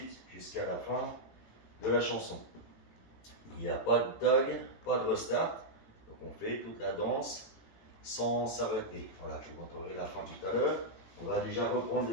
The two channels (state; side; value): late; right; 18 ms